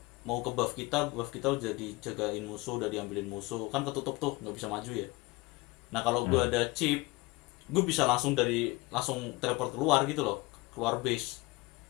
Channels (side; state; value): right; quieter; 23.1 dB